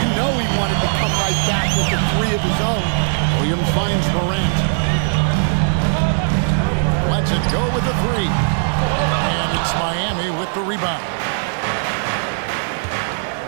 You know he wanted to come right back with a 3 of his own. Williams finds Morant. Lets it go with the 3. And it's Miami with the rebound.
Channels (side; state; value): left; silent; digital silence